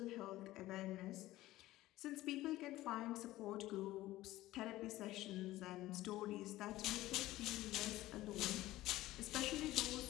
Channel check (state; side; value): quieter; right; 16.4 dB